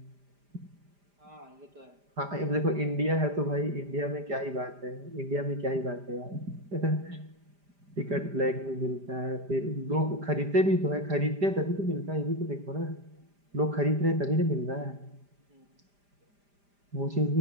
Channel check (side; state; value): left; late; 5.0 ms